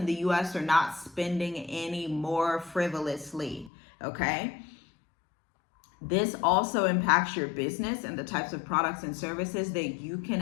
the U.S. are not spending any more frivolously, okay? This also impacts your business and the types of products and services that you can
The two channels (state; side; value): drops out; right; at 3.7 s